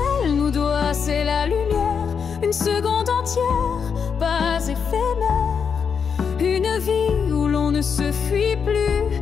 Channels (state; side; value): quieter; right; 6.5 dB